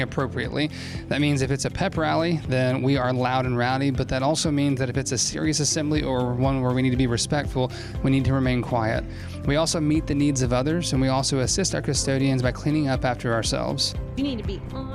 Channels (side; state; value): both; identical; correlation 1.00